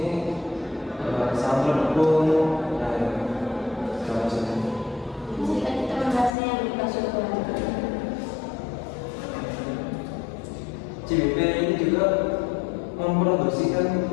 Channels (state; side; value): drops out; right; at 6.3 s